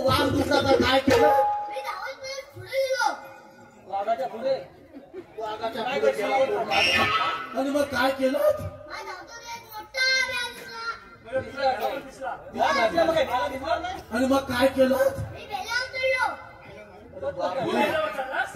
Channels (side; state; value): both; identical; correlation 1.00